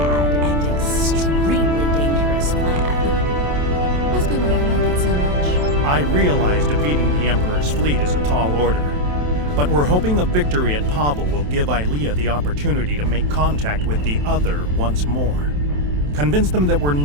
and extremely dangerous plan. Must be why I like it so much. I realize defeating the Emperor's fleet is a tall order, but we're hoping a victory at Pavo will give Ilea the opportunity to make contact with the Other once more. Convince them that we're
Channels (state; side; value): late; left; 27 ms